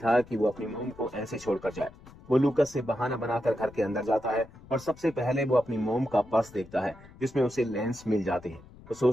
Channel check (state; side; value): noise; left; rumble, 21 dB below the sound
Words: कि वो अपनी मॉम को ऐसे छोड़कर जाए। वो लूकस से बहाना बनाकर घर के अंदर जाता है और सबसे पहले वो अपनी मॉम का पर्स देखता है, जिसमें उसे लेंस मिल जाते हैं। वो